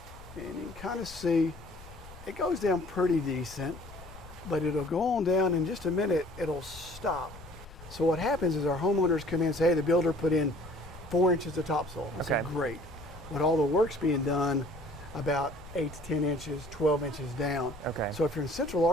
and you can kind of see it goes down pretty decent, but it'll go on down in just a minute, it'll stop. So what happens is our homeowners come in and say, hey, the builder put in 4 inches of topsoil. I said, great. But all the work's being done about 8 to 10 inches, 12 inches down. Okay. So if you're in central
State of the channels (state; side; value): noise; left; rumble, 18 dB below the sound